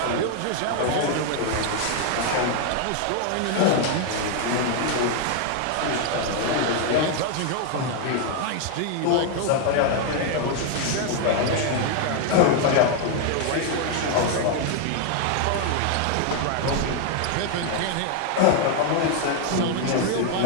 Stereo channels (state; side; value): different; both; correlation 0.00